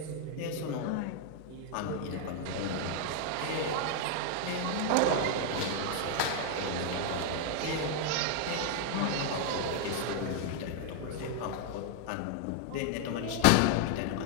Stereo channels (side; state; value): both; different; correlation 0.00